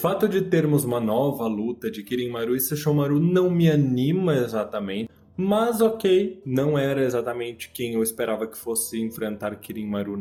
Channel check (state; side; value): identical; both; correlation 1.00